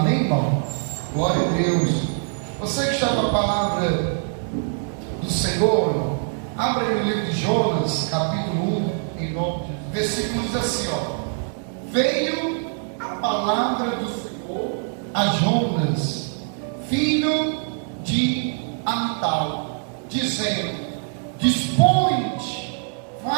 irmão? Glória a Deus. Você que está com a palavra do Senhor, abra aí o livro de Jonas, capítulo 1, em nome de Deus. Versículo diz assim, veio a palavra do Senhor a Jonas, filho de Amital, dizendo: dispõe-te,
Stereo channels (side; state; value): left; silent; 58 dB below the other